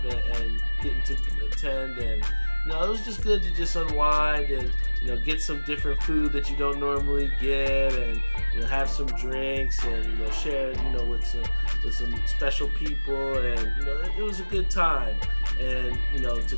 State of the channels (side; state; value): both; inverted; correlation -1.00